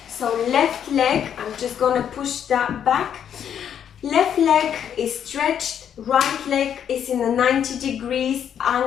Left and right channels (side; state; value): right; quieter; 8.9 dB